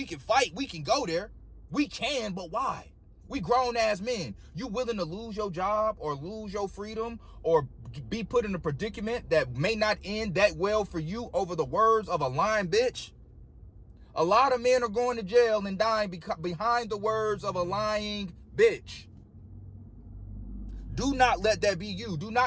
can fight. We can go there. We can, but why? We grown ass men. You willing to lose your job or lose your freedom or be put in a predicament that may not end that well for you over the words of a lying bitch? A lot of men are going to jail and dying behind the words of a lying bitch. Do not let that be you. Do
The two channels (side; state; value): both; identical; correlation 1.00